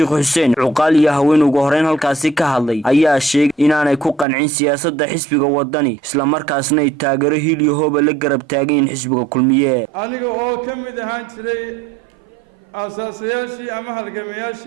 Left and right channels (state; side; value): drops out; left; at 4.2 s